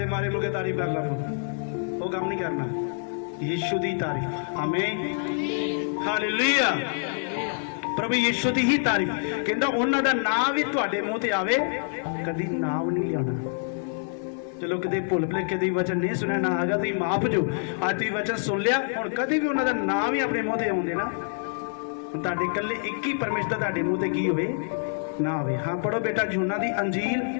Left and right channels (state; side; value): silent; right; 61 dB below the other